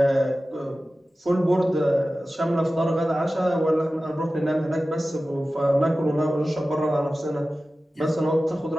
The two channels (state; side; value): normal; both; correlation 0.95